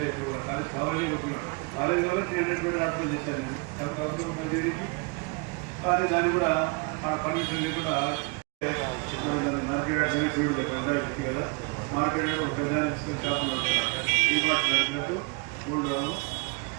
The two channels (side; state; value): left; quieter; 31.3 dB